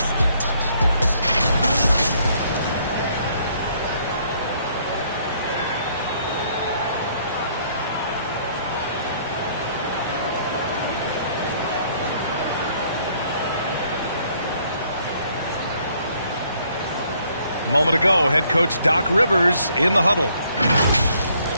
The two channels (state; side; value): inverted; both; correlation -0.65